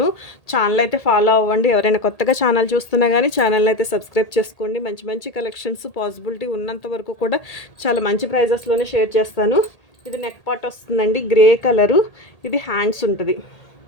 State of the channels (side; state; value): right; late; 1.8 ms